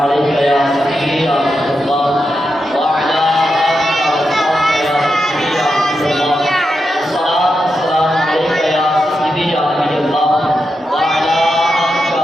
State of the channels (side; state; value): both; normal; correlation 0.87